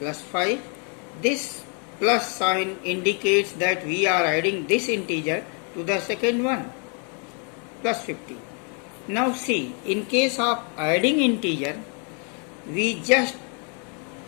+5। This plus sign indicates that we are adding this integer to the second one +15। Now see, in case of adding integer, we just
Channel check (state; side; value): quieter; right; 38.9 dB